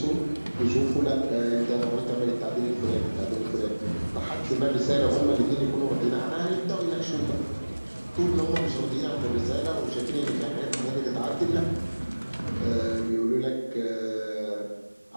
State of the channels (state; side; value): inverted; both; correlation -1.00